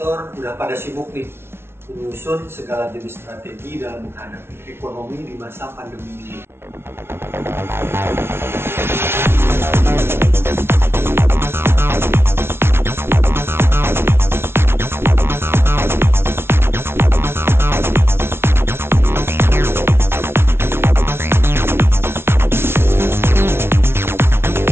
udah pada sibuk nih menyusun segala jenis strategi dalam menghadapi ekonomi di masa pandemi ini.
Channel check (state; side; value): late; left; 0.12 ms